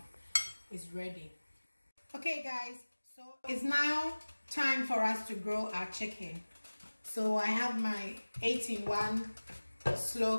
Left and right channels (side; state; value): both; inverted; correlation -1.00